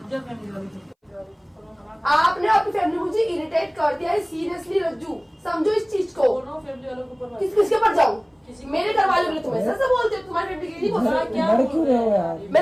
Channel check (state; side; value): identical; both; correlation 1.00